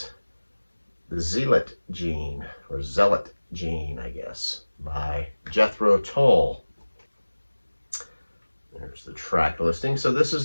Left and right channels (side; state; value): both; inverted; correlation -1.00